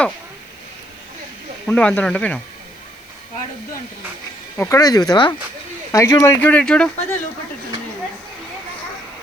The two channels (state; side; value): noise; left; hiss, 29 dB below the sound